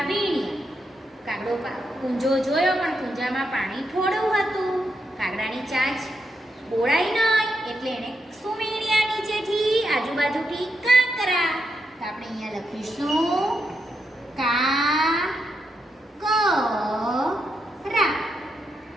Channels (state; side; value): normal; both; correlation 0.83